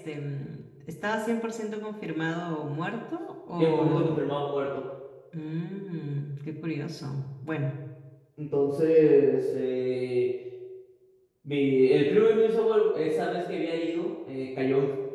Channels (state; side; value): identical; both; correlation 1.00